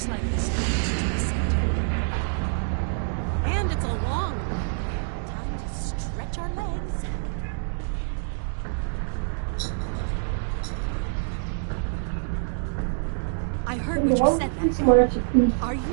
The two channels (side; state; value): left; silent; digital silence